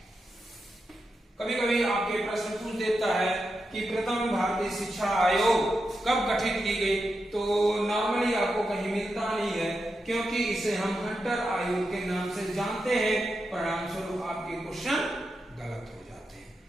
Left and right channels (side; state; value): both; normal; correlation 0.88